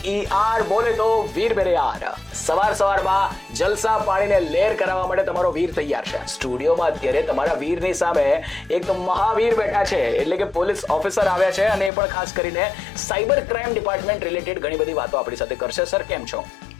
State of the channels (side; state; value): right; drops out; at 11.9 s